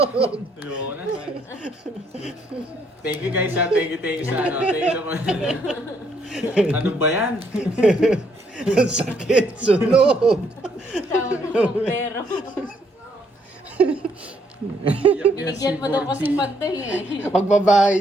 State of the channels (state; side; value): normal; both; correlation 0.71